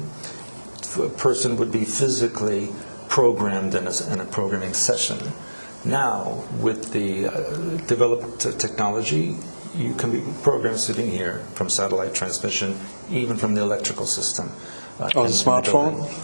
a person would be physically programmed in a programming session. Now, with the developed technology, you can be programmed sitting here from satellite transmission, even from the electrical system. On a smartphone?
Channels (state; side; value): inverted; both; correlation -1.00